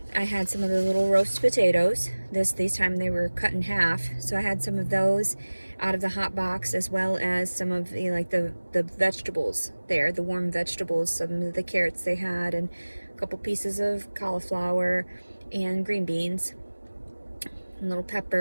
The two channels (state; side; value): inverted; both; correlation -1.00